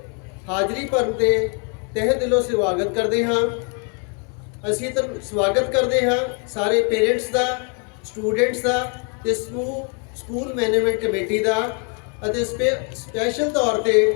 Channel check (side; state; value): right; quieter; 37.1 dB